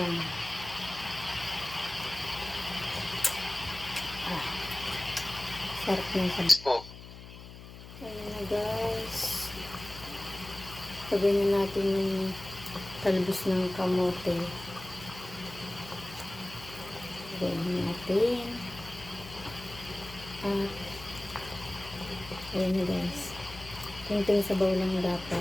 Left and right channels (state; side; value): noise; left; hum, 15 dB below the sound